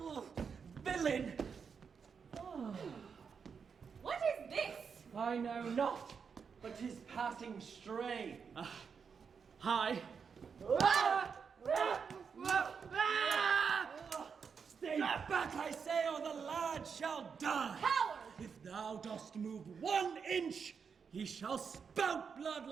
Villain! What is this? I know not, but 'tis passing stray. Hi. Stay back, I say, or the lad shall die. Coward! If thou dost move 1 inch, he shall spout blood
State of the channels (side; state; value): left; quieter; 6.2 dB